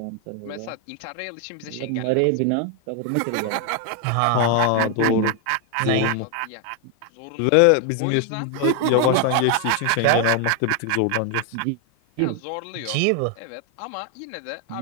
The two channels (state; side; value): different; both; correlation 0.01